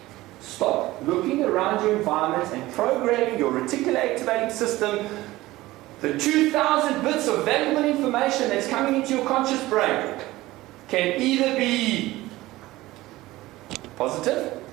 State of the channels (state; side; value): quieter; left; 18.0 dB